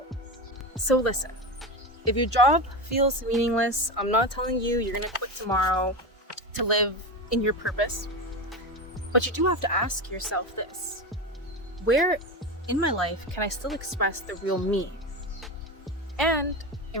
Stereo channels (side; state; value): both; normal; correlation 0.20